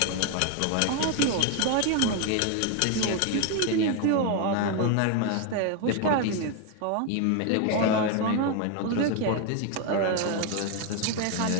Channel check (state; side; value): different; both; correlation 0.01